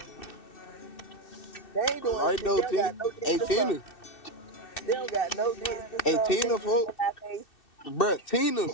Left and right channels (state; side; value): late; right; 2.6 ms